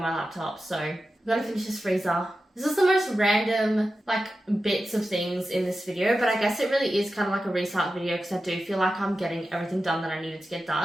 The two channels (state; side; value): normal; both; correlation 0.92